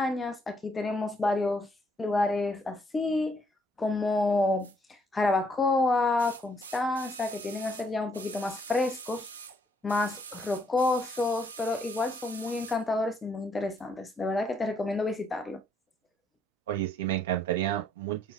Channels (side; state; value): both; normal; correlation 0.70